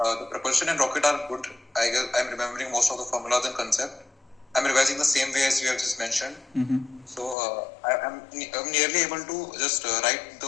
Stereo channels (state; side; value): drops out; right; at 7.4 s